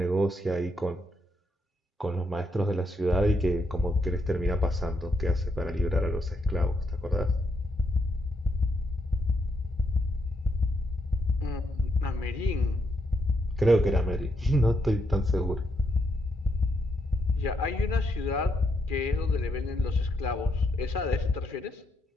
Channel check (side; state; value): both; normal; correlation 0.79